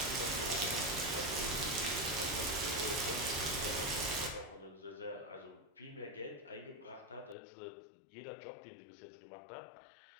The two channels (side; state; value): right; drops out; at 7.4 s